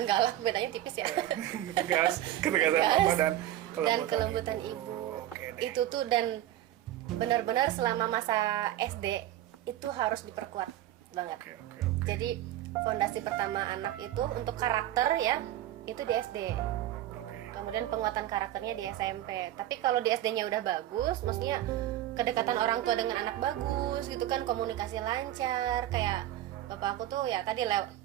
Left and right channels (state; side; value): quieter; left; 13.4 dB